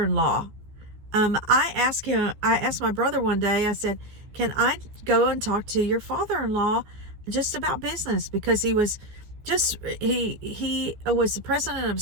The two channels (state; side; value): late; left; 14 ms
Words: I asked my brother one day, I said, can I go and talk to your father-in-law just about business? Because he was he was the president of a